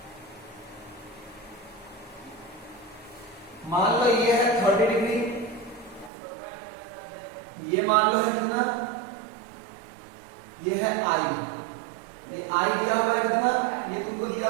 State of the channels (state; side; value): drops out; left; at 6.1 s